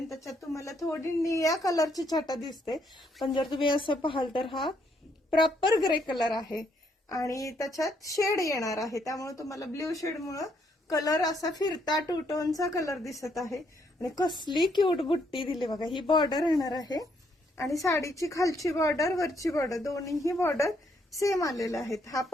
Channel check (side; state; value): both; normal; correlation 0.72